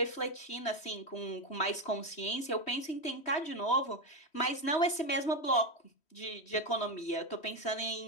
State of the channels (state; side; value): late; right; 3.1 ms